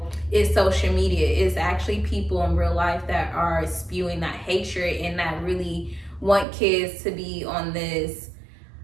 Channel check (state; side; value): drops out; left; at 6.5 s